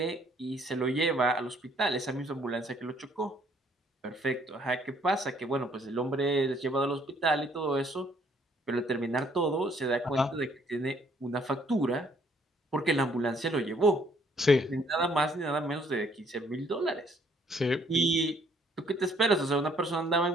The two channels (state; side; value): normal; both; correlation 0.64